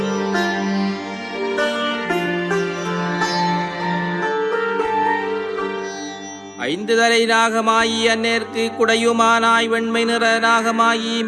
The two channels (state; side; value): identical; both; correlation 1.00